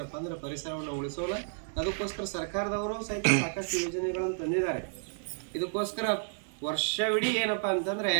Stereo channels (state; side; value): silent; left; digital silence